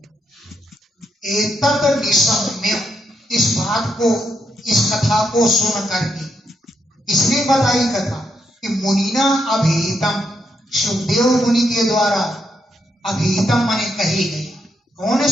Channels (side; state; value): both; normal; correlation 0.79